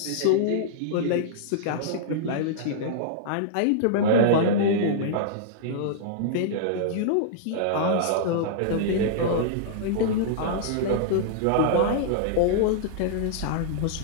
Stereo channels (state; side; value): different; both; correlation -0.02